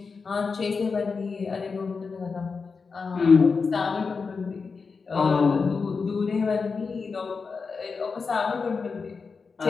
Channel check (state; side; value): quieter; right; 4.9 dB